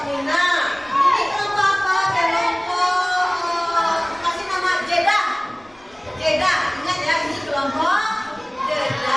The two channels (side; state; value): left; noise; rumble, 30 dB below the sound